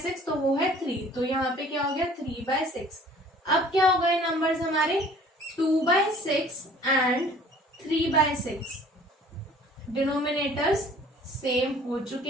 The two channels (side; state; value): both; normal; correlation 0.51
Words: तो वो है 3। तो यहाँ पे क्या हो गया, 3/6। अब क्या हो गए नंबर्स हमारे, 2/6 एंड 3/6। डिनोमिनेटर्स सेम हो